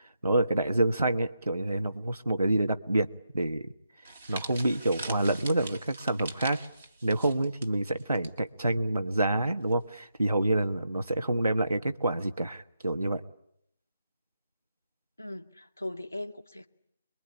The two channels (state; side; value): inverted; both; correlation -0.83